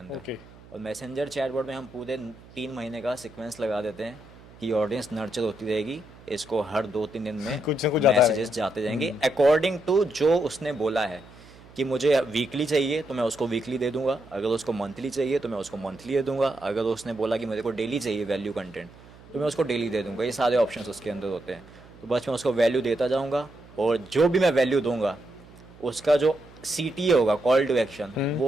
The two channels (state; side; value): noise; right; hum, 22 dB below the sound